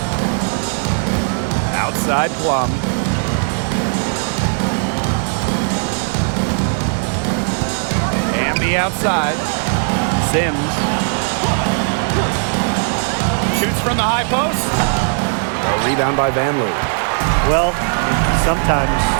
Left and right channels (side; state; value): left; silent; 57 dB below the other